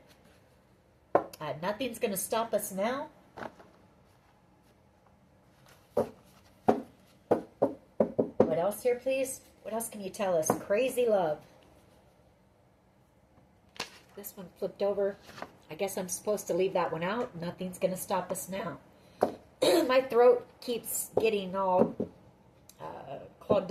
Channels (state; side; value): identical; both; correlation 1.00